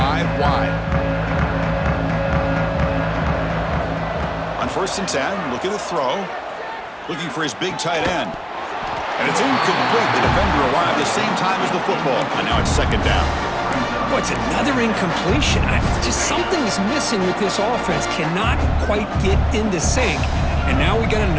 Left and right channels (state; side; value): identical; both; correlation 1.00